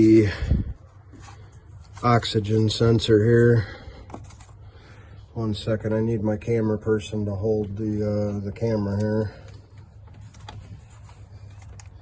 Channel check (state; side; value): identical; both; correlation 1.00